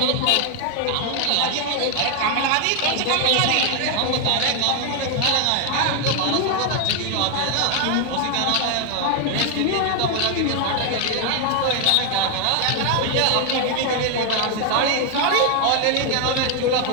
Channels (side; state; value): both; different; correlation 0.00